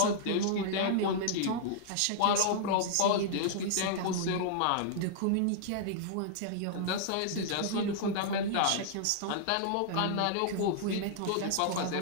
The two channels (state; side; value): different; both; correlation -0.01